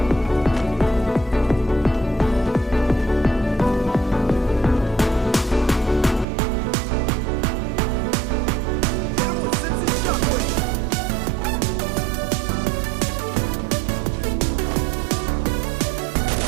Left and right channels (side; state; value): left; drops out; at 6.2 s